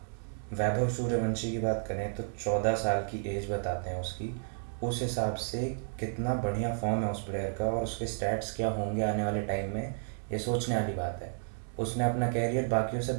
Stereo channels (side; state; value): left; silent; 56 dB below the other